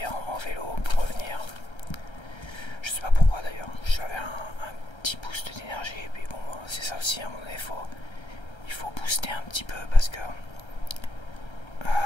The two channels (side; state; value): right; late; 1.3 ms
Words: en vélo pour revenir. Je sais pas pourquoi d'ailleurs, j'avais un petit boost d'énergie, et puis bon, c'est ça aussi, à un moment donné, il faut booster un petit peu parce que il